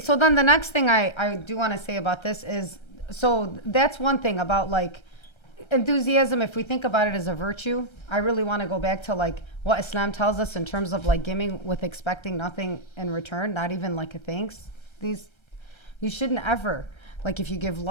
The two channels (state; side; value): late; right; 1.3 ms